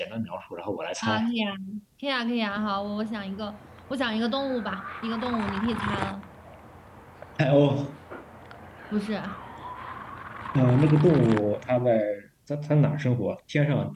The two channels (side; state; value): both; identical; correlation 1.00